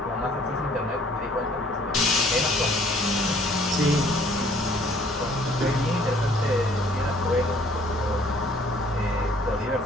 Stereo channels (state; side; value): normal; both; correlation 0.58